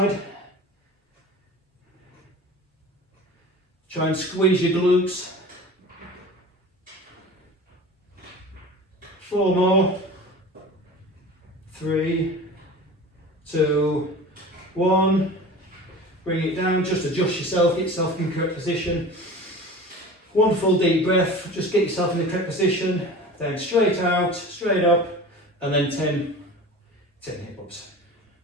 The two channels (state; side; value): normal; both; correlation 0.37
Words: Try and squeeze your glutes. 4 more. 3, 2, 1. Bring it down, just adjust yourself, get yourself in the correct position. One full deep breath, just get yourself in the correct position. Then straight out, straight up, and then 10 hip ups.